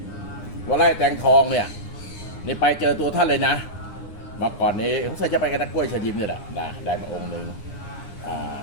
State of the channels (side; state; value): right; late; 9.8 ms